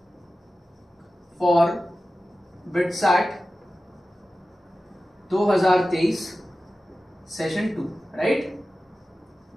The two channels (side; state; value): both; normal; correlation 0.94